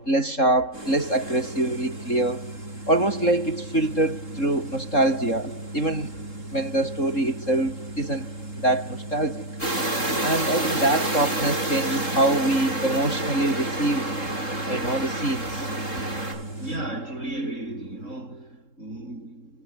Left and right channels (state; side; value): late; right; 3.7 ms